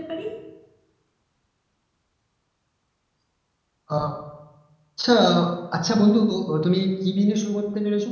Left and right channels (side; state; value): both; identical; correlation 1.00